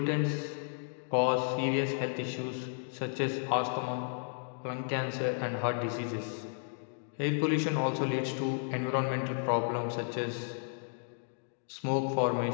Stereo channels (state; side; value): silent; right; digital silence